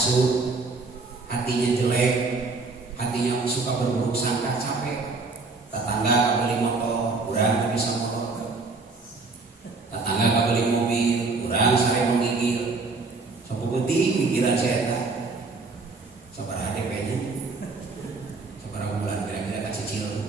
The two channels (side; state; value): left; quieter; 3.9 dB